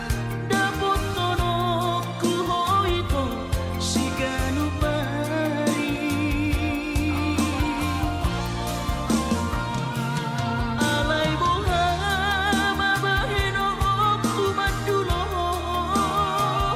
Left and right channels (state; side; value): identical; both; correlation 1.00